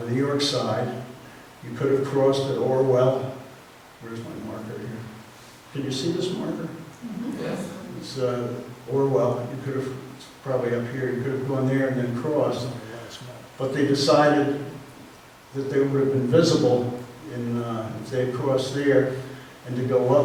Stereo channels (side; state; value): both; identical; correlation 1.00